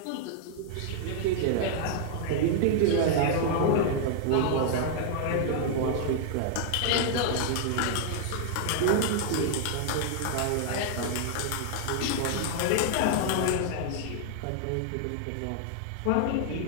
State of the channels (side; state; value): both; different; correlation -0.01